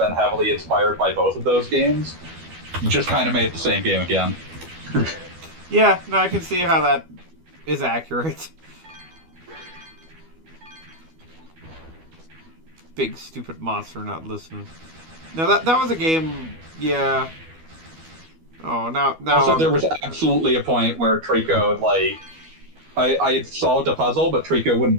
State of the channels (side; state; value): left; late; 12 ms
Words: heavily inspired by both of those games, you just kind of made the same game again. Yeah, no, I can see how that is accurate. Big stupid monster not listening. No, that was a game. Yeah. Oh, now. Also, there was absolutely a point where Trico I had solved a puzzle, but Trico wouldn't